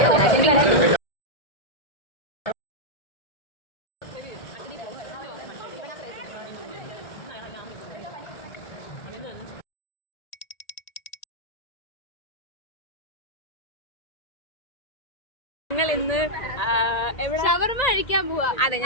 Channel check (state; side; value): late; right; 1.9 ms